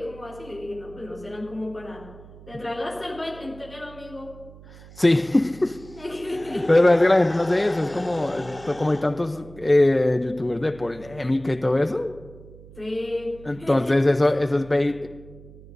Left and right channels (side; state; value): right; noise; hum, 20 dB below the sound